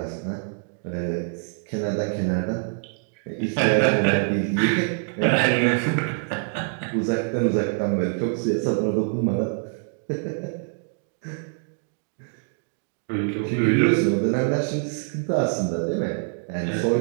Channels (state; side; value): silent; left; 57 dB below the other